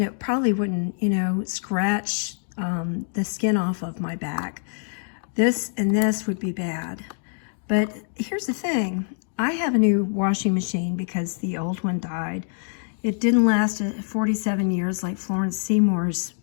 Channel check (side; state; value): right; silent; digital silence